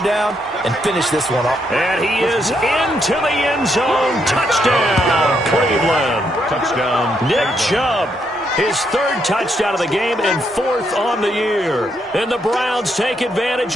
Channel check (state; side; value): normal; both; correlation 0.77